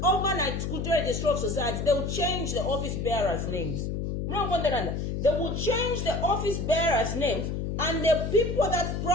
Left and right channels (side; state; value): left; noise; hum, 2 dB below the sound